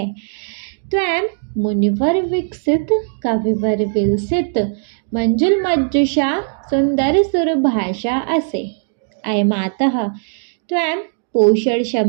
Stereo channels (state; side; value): silent; left; 62 dB below the other